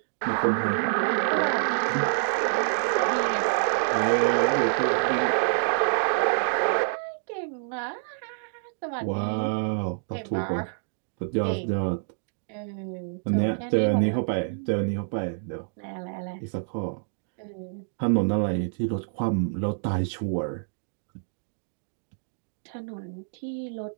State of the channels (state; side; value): silent; left; digital silence